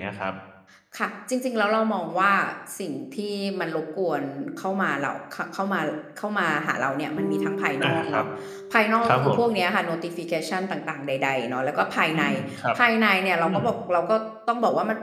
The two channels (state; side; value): identical; both; correlation 1.00